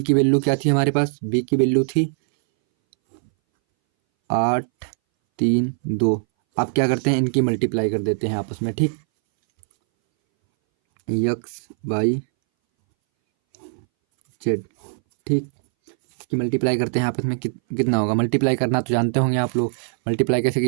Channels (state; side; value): silent; left; 62 dB below the other